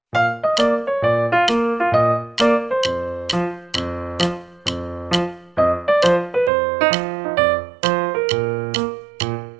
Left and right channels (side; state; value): left; drops out; at 6.5 s